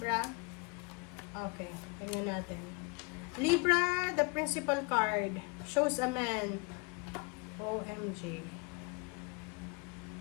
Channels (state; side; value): quieter; right; 29.3 dB